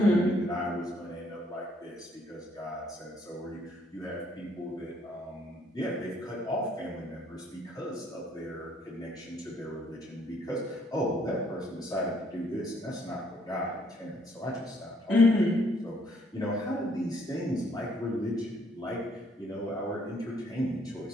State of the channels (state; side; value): normal; both; correlation 0.66